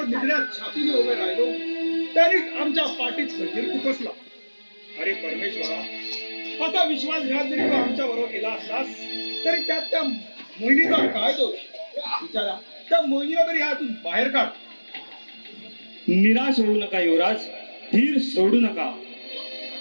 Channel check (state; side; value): inverted; both; correlation -1.00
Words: निधड्यात छातीने उभे राहिलो, त्यांनीच आमच्या पाठीत खंजीर खुपसला. अरे परमेश्वरा, असा विश्वासघात जरी तू आमच्या बरोबर केला असलास तरी त्यात त्या मोहिनीचा काय दोष? विचारा, त्या मोहिनीला तरी ह्यातून बाहेर काढ. निराश होऊ नका युवराज, धीर सोडू नका.